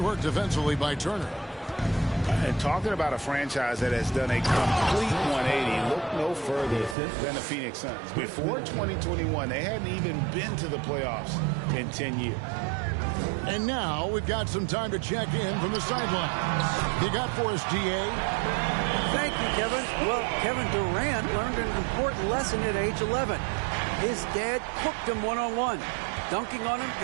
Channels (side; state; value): left; drops out; at 7.0 s